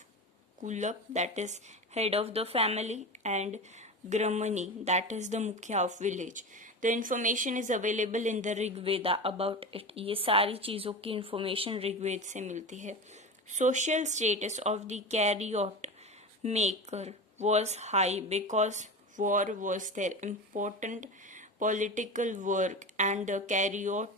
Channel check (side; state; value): both; normal; correlation 0.26